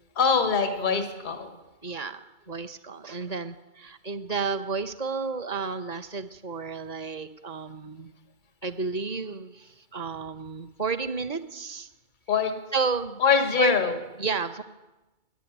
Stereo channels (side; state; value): right; late; 2.3 ms